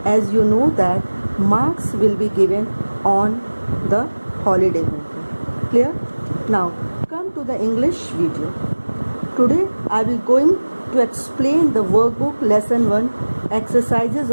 as you know that marks will be given on the holiday homework. Clear? Now come to the English video. Today I will going to explain the workbook lesson 1 exercises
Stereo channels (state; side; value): inverted; both; correlation -1.00